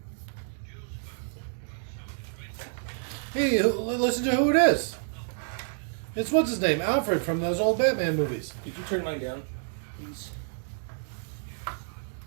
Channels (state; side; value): silent; left; digital silence